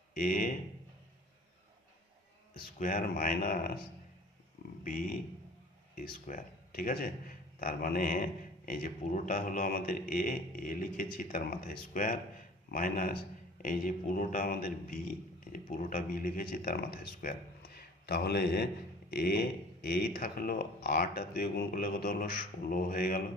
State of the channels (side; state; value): both; normal; correlation 0.47